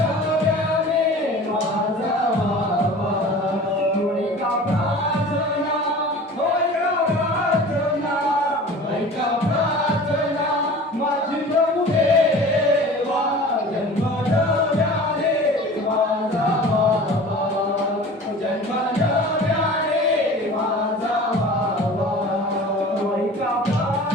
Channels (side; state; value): both; normal; correlation 0.41